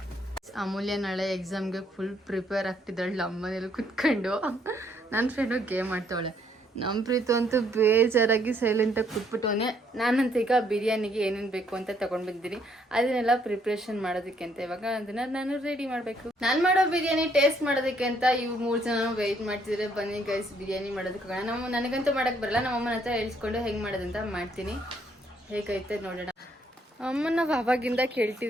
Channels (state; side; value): normal; both; correlation 0.69